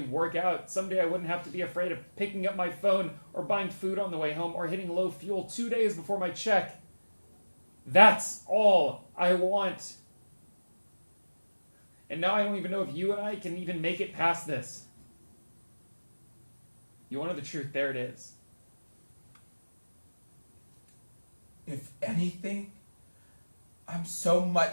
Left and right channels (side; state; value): both; inverted; correlation -1.00